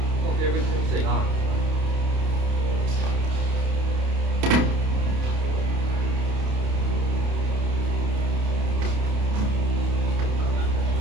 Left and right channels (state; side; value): late; left; 29 ms